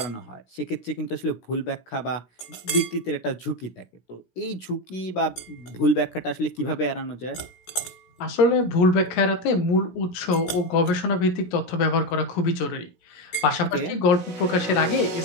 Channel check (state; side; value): late; right; 17 ms